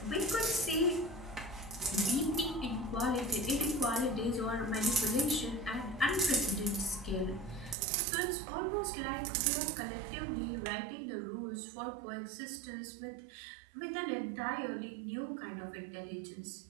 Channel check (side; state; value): left; drops out; at 7.8 s